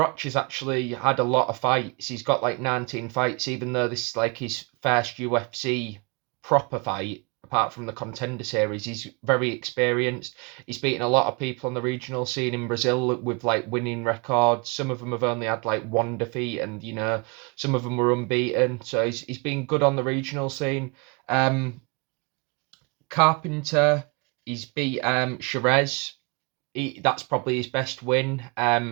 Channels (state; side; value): quieter; left; 31.6 dB